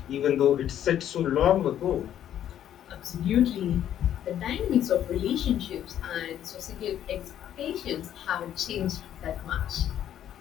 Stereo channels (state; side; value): quieter; right; 10.7 dB